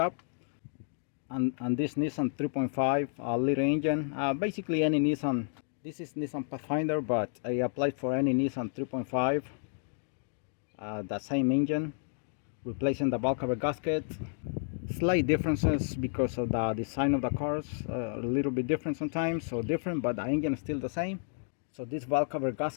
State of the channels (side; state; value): right; silent; digital silence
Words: And this Nissan 3.5 liter engine, basically any Nissan. This is Nissan Pathfinder, but I applied for any Nissan 3.5, the same engine, replacing the bulk cover gasket. Slight differences because of the design of the cars, a little bit different sometimes, so different, but the engine is still the same. So this valve cover